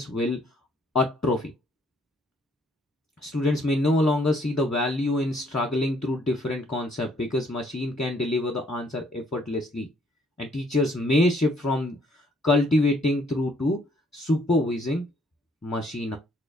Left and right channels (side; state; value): both; normal; correlation 0.65